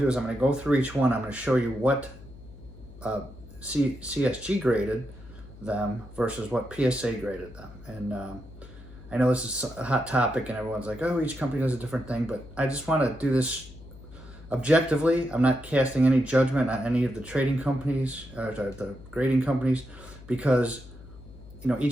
do is I'm gonna go through each one. I'm gonna show you what CSG graded them versus what PSA graded them. And I know this is a hot topic and everyone's like, oh, each company does a different thing, but I just want to do this objectively. I'm not casting any judgment on any of the trading companies or the grading companies, because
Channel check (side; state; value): left; noise; hum, 18 dB below the sound